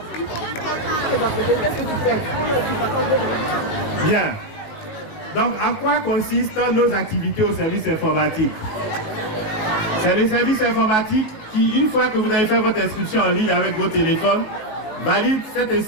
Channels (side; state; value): right; late; 19 ms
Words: Bien. Donc, en quoi consistent nos activités au service informatique? C'est le service informatique qui, une fois que vous avez fait votre inscription en ligne avec vos téléphones, valide cette